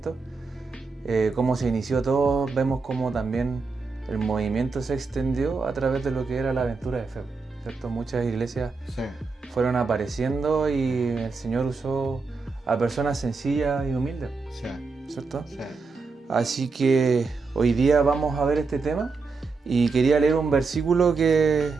Cómo se inició todo, vemos cómo también el movimiento se extendió a través de lo que era la aventura de fe, ¿cierto? Muchas iglesias Sí, fueron apareciendo y el Señor usó a personas sencillas y humildes, sí, ¿cierto? sí. Así que hoy día vamos a ver este tema y quería leer un versículo que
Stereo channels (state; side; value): quieter; left; 4.4 dB